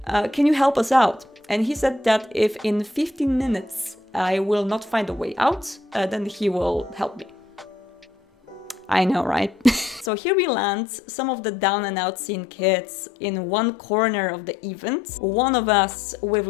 Can you help us out? And he said that if in 15 minutes I will not find a way out, then he will help me. I know, right? So here we land, some of the down and out scene kids in one corner of the event. One of us with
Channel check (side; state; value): right; drops out; at 10.1 s